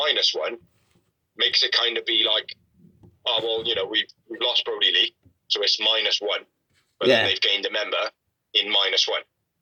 makes it kind of be like, oh well, you know, we've lost Brody Lee, so it's -1, but then they've gained a member in -1.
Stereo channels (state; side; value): identical; both; correlation 1.00